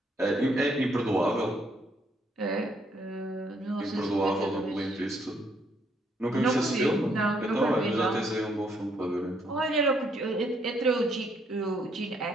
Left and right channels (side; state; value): both; normal; correlation 0.71